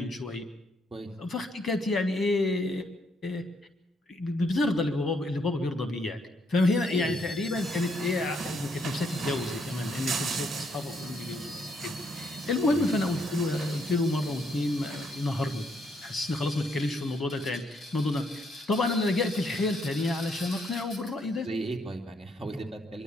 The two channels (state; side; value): normal; both; correlation 0.73